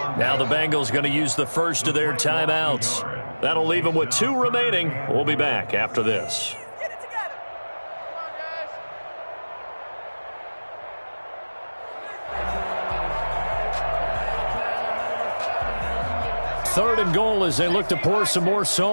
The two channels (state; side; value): inverted; both; correlation -1.00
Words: Now the Bengals going to use the first of their timeouts. That'll leave them with 2 remaining. We'll be back after this. Third and goal as they look to pour some more